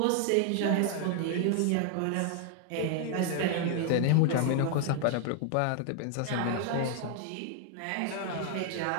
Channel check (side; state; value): both; different; correlation 0.00